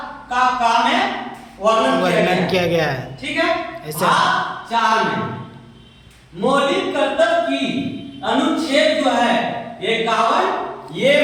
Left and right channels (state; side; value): identical; both; correlation 1.00